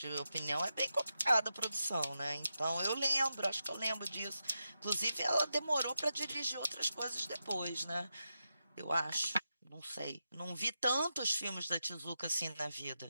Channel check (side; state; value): both; inverted; correlation -0.87